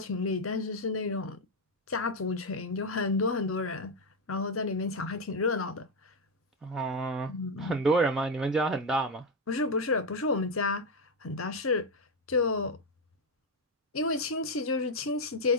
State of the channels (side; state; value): both; normal; correlation 0.07